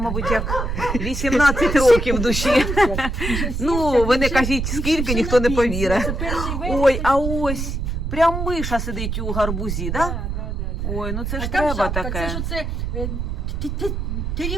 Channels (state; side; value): noise; right; rumble, 3 dB below the sound